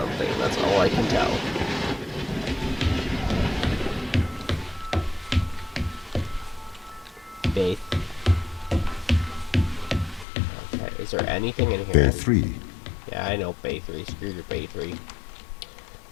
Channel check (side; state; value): right; drops out; at 10.2 s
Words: that's all I can tell. Faith. Okay, is there anything in here? Bay 3. Yeah, I know Bay 3. Screw your Bay 3.